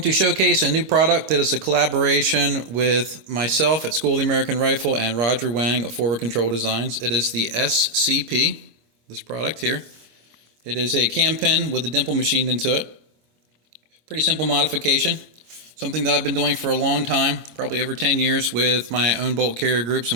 to showcase a new product that is a collaboration with myself at School of the American Rifle and Roger Wang of Forward Control Designs. It is the SCP, this product here. It is a cam pen with a dimple machined into it. Pretty simple modification. Something that I've been doing for a long time, probably over 10 years, with my own bolt carrier groups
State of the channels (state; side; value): late; left; 26 ms